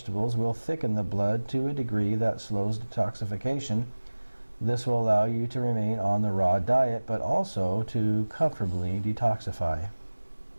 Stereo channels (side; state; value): both; inverted; correlation -1.00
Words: will thicken the blood to a degree that slows detoxification. This will allow you to remain on the raw diet, but also to comfortably detoxify.